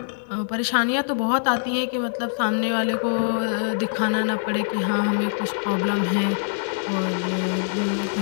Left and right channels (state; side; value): silent; right; digital silence